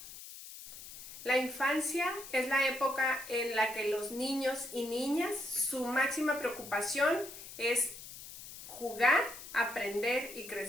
La infancia es la época en la que los niños y niñas, su máxima preocupación es jugar, aprender y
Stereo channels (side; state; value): left; noise; hiss, 13 dB below the sound